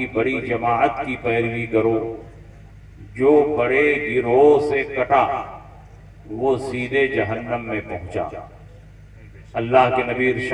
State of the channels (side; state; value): both; identical; correlation 1.00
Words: बड़ी जमाअत की पैरवी करो। जो बड़े गिरोह से कटा वो सीधे जहन्नम में पहुंचा। अल्लाह के नबी